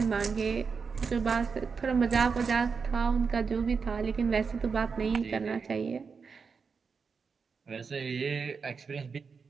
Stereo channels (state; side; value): quieter; left; 5.4 dB